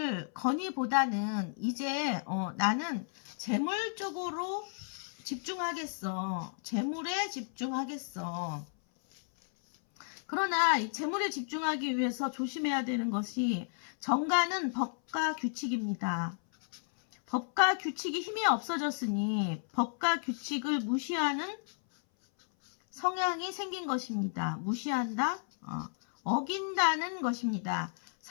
건의보다는 이제 나는 재물 쪽으로 집중하겠어. 재물에 집중하겠어. 그러나 이 재물에 집중하기 위해서 조심해야 되는 것이 정관은 법과 규칙입니다. 법과 규칙이 힘이 없어졌으니 법과 규칙을 무시하는 성향이 생긴 것입니다. 무시한다, 어긴다는 것입니다.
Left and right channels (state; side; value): silent; right; 56 dB below the other